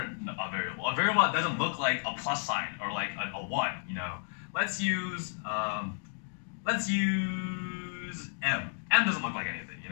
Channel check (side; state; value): right; silent; 56 dB below the other